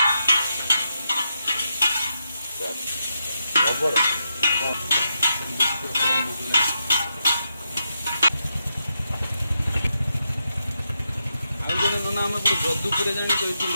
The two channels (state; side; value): inverted; both; correlation -0.84